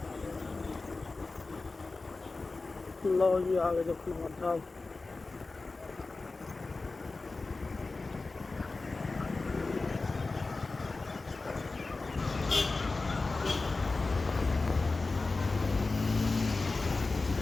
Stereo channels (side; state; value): right; quieter; 3.6 dB